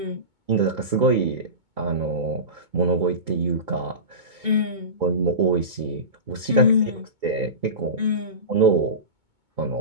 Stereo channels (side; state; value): left; late; 2.2 ms